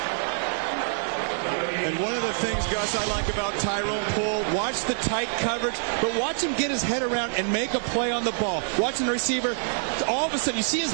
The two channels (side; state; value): left; silent; digital silence